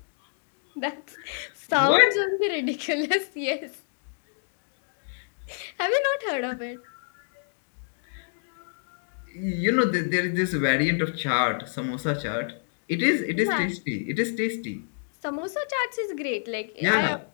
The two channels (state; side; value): silent; right; digital silence